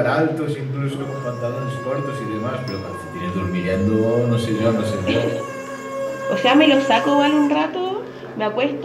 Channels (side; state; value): both; identical; correlation 1.00